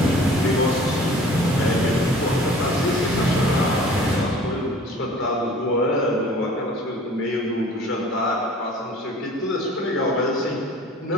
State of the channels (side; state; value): both; normal; correlation 0.48